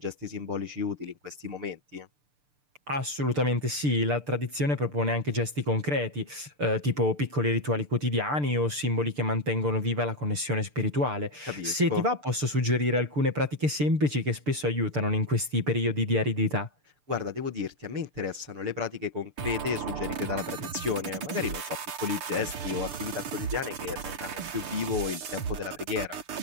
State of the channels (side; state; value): left; late; 6.8 ms